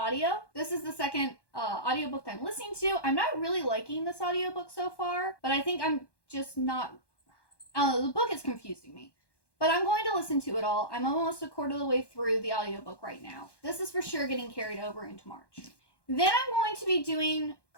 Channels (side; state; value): right; late; 1.1 ms